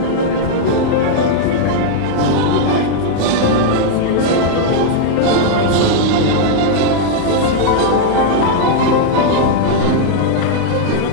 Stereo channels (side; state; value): both; different; correlation -0.01